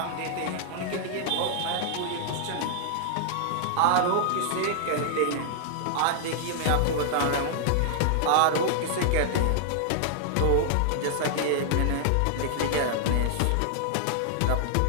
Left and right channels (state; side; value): different; both; correlation -0.01